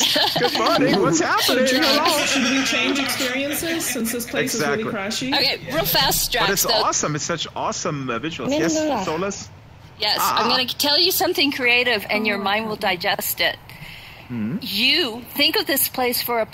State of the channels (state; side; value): identical; both; correlation 1.00